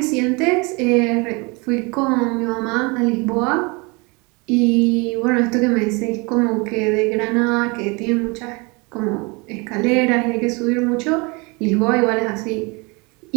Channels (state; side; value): quieter; left; 28.3 dB